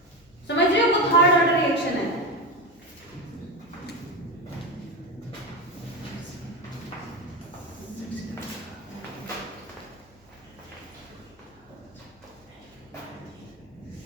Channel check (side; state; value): left; noise; hum, 29 dB below the sound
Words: समझ रहे हो? वो थर्ड ऑर्डर रिएक्शन है।